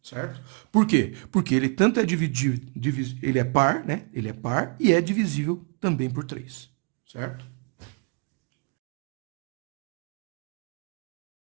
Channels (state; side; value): quieter; left; 36.8 dB